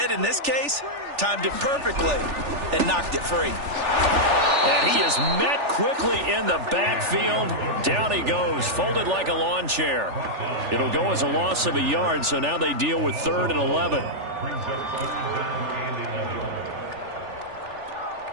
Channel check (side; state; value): left; late; 3.4 ms